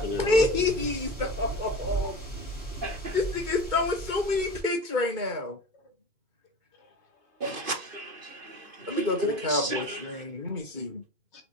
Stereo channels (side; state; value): left; late; 2.5 ms